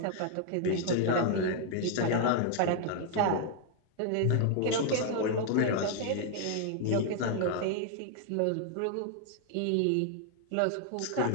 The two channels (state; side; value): different; both; correlation 0.00